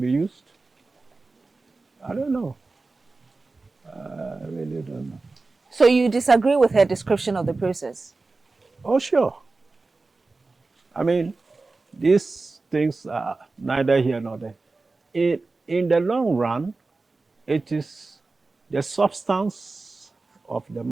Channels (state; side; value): quieter; left; 3.6 dB